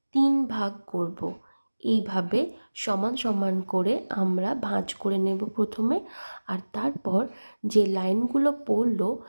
3 ভাগ করব। এইভাবে সমান সমান করে আমরা ভাঁজ করে নেব প্রথমে, আর তারপর যে লাইনগুলো পড়লো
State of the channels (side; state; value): both; inverted; correlation -1.00